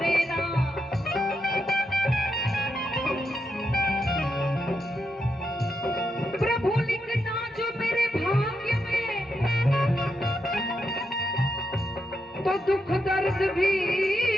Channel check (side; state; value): both; normal; correlation 0.83